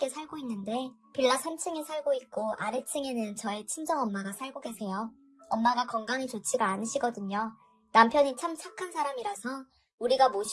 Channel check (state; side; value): identical; both; correlation 1.00